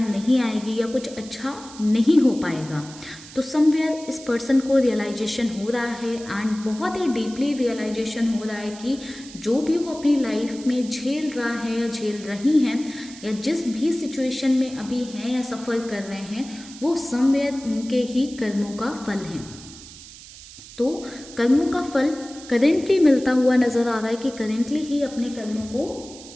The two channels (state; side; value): noise; right; hiss, 17 dB below the sound